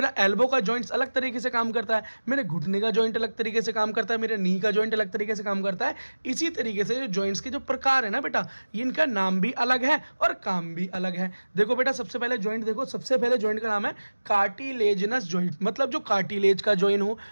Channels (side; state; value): both; inverted; correlation -1.00